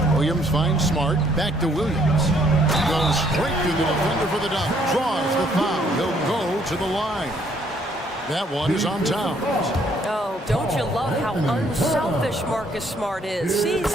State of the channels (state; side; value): normal; both; correlation 0.66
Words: Williams finds Smart. Back to Williams. Goes straight through the defender for the dunk. Draws the foul. He'll go to the line. That one is on Towns. Oh, don't you love how unselfish Marcus Smart is?